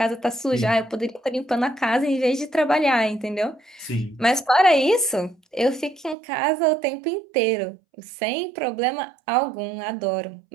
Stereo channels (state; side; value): drops out; left; at 6.2 s